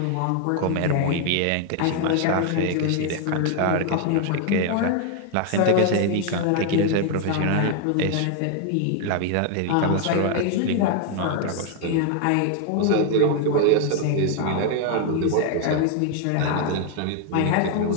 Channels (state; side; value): different; both; correlation 0.00